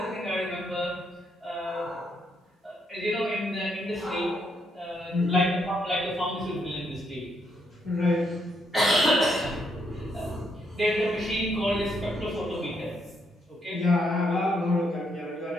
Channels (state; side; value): normal; both; correlation 0.76